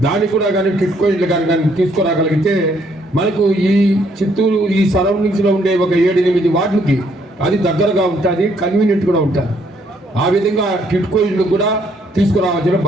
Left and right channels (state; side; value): normal; both; correlation 0.68